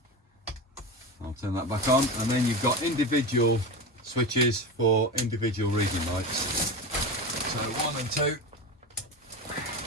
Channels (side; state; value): both; normal; correlation 0.24